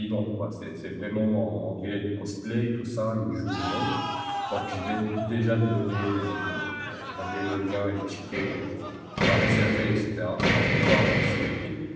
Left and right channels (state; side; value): identical; both; correlation 1.00